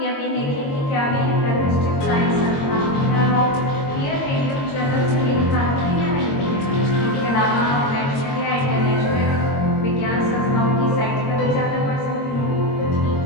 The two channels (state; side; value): late; right; 22 ms